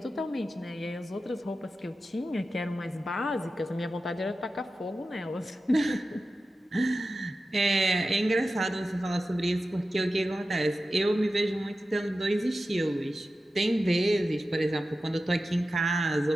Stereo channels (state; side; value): normal; both; correlation 0.93